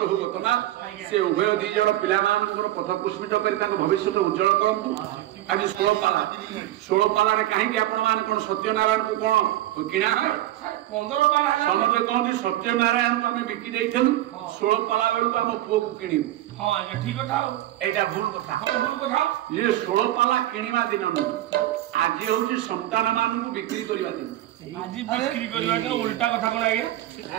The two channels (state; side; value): quieter; left; 14.5 dB